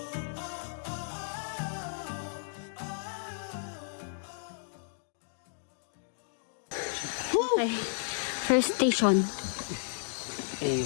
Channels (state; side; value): silent; right; digital silence